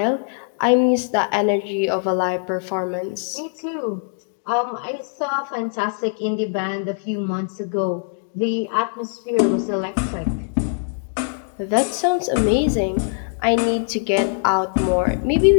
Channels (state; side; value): silent; right; digital silence